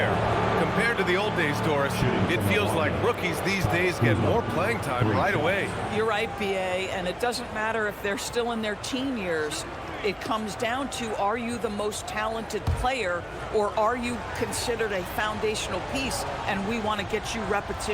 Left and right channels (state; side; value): identical; both; correlation 1.00